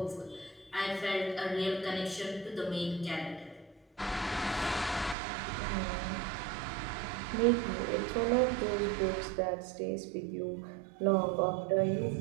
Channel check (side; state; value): left; drops out; at 5.2 s